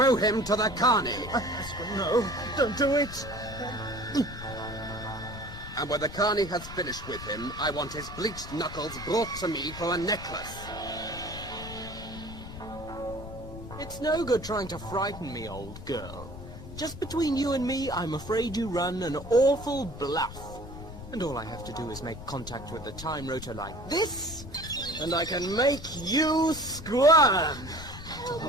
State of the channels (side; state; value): left; noise; rumble, 12 dB below the sound